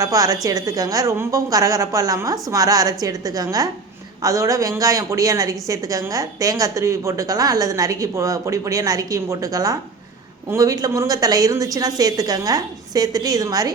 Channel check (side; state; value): left; quieter; 4.2 dB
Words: அரைச்சி எடுத்துக்கோங்க. ரொம்பவும் கரகரப்பாக இல்லாமல் சுமாராக அரைச்சி எடுத்துக்கோங்க. அதோட வெங்காயம் பொடியாக நறுக்கி சேர்த்துக்கோங்க. தேங்காய் துருவி போட்டுக்கலாம், அல்லது நறுக்கி பொடி பொடியாக நறுக்கியும் போட்டுக்கலாம். உங்கள் வீட்டில் முருங்கைத்தலை இருந்துச்சுன்னா சேர்த்துக்கோங்க. சேர்த்துட்டு இது மாதிரி